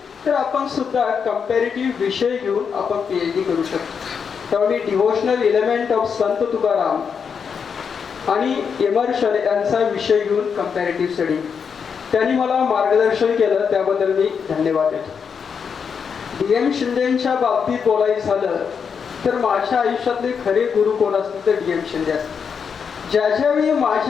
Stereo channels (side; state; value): right; quieter; 6.5 dB